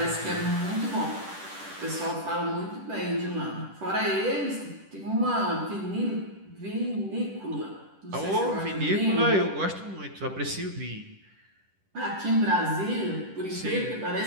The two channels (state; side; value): late; left; 10 ms